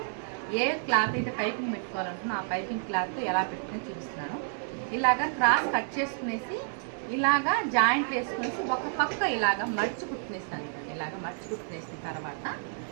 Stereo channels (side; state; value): left; silent; digital silence